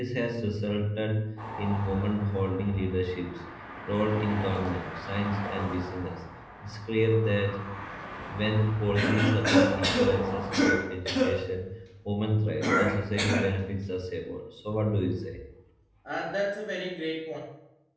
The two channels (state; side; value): identical; both; correlation 1.00